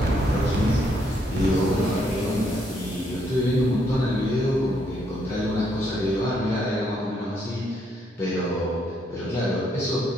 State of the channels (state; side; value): normal; both; correlation 0.73